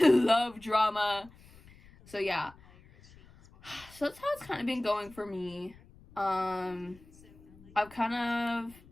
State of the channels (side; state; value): left; noise; rumble, 24 dB below the sound